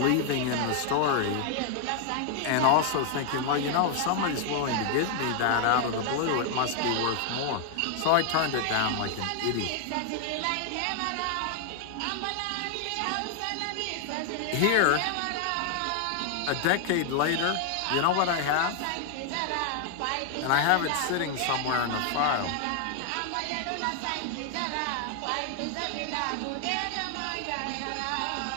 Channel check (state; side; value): different; both; correlation 0.00